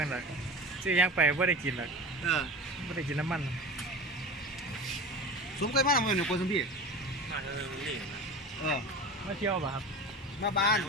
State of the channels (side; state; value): both; normal; correlation 0.32